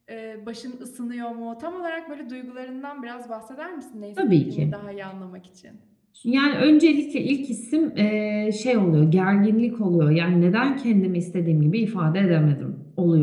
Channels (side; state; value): both; identical; correlation 1.00